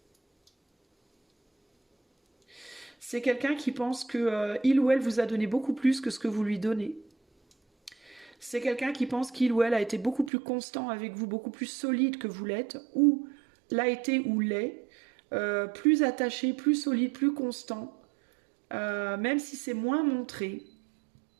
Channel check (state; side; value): drops out; left; at 10.3 s